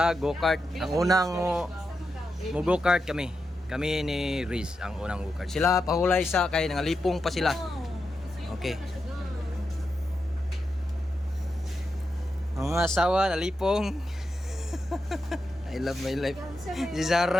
go-kart. Ang unang mo go-kart kami. Kami ni Riz ang unang go-kart. Sila pahulay sa kay nangalipong pa sila. Okay. Ang mga asawa nalipong. I love my life. Si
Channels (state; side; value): normal; both; correlation 0.87